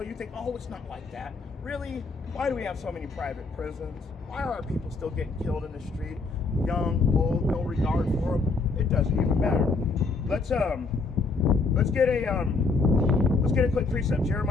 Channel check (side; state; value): right; quieter; 4.0 dB